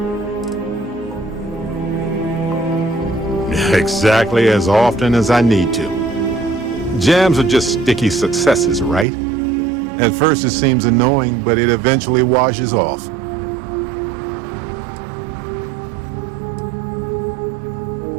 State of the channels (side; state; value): left; drops out; at 9.1 s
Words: Exactly as often as I need to. Jams are just sticky successes, right? At first it seems annoying, but it eventually washes off.